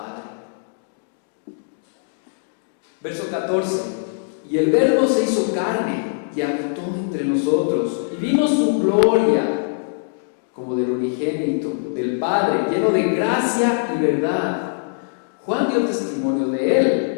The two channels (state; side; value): silent; right; digital silence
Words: Verso 14. Y el Verbo se hizo carne y habitó entre nosotros, y vimos su gloria como del unigénito del Padre, lleno de gracia y verdad. Juan dio testimonio de